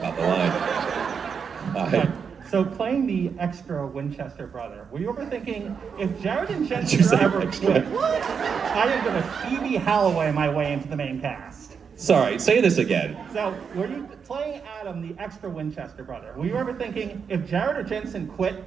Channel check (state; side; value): quieter; left; 6.4 dB